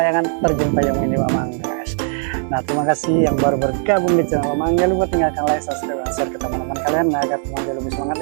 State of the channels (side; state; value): left; silent; 66 dB below the other